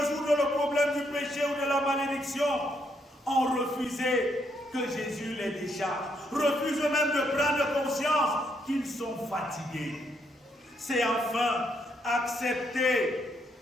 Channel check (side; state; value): both; normal; correlation 0.75